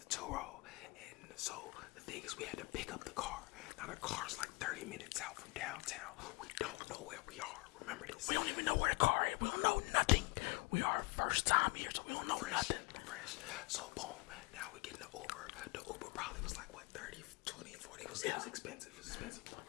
Turo, and so the thing is we had to pick up the car. Now the car's like 30 minutes out from downtown. We don't know where we are, remember this. we don't even know where the car is. We don't know nothing. We are first time here, so we don't know nothing. Fresh. So boom, now we get in the Uber. The Uber probably was like what, 30, 20, 40. It was expensive. It was expensive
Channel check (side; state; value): right; quieter; 26.8 dB